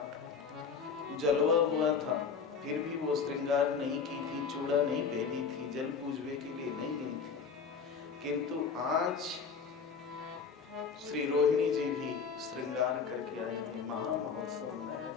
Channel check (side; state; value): right; quieter; 5.8 dB